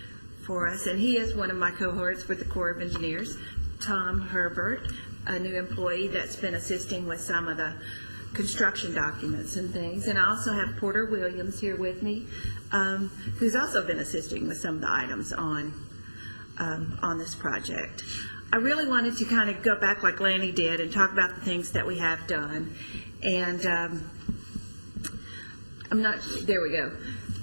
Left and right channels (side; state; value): both; inverted; correlation -1.00